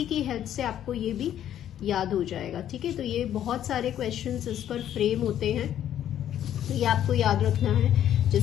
की हेल्प से आपको ये भी याद हो जाएगा. ठीक है, तो ये बहुत सारे क्वेश्चंस इस पर फ्रेम होते हैं तो ये आपको याद रखना है.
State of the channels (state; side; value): quieter; right; 10.9 dB